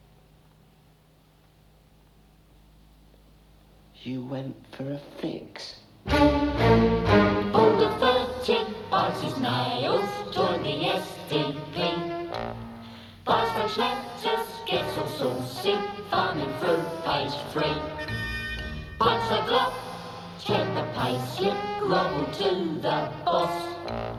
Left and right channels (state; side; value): identical; both; correlation 1.00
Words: You went for a fix. Older 30 bites his nails, joined the SDP. Buys French letters, gets all saucy, thumbing through page 3. Punch the clock, check the payslip, grovel to the boss.